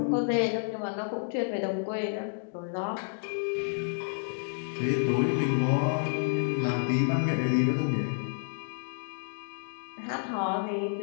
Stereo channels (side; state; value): right; silent; digital silence